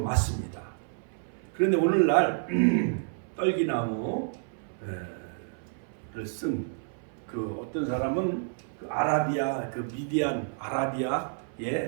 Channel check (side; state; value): left; silent; 58 dB below the other